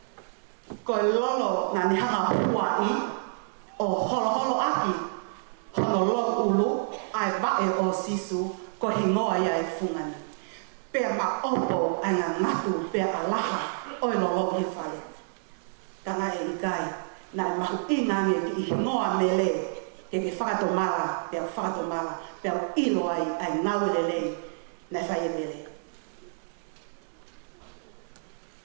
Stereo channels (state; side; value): silent; left; digital silence